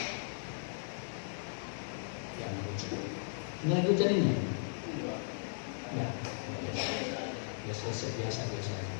Jangan hujan. Ini lagi hujan ini? Ya. Biasa.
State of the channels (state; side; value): silent; right; 53 dB below the other